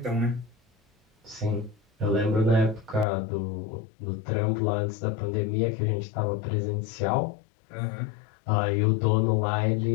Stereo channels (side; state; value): right; drops out; at 3.1 s